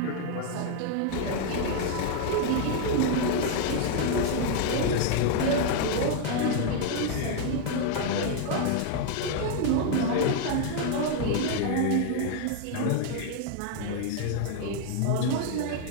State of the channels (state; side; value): different; both; correlation 0.00